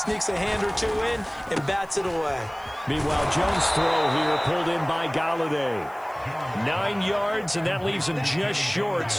a hand or two in and bats it away. Meanwhile, Jones' throw here pulled in by Galladay. 9 yards, and that leaves him just short,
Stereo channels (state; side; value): noise; right; hiss, 27 dB below the sound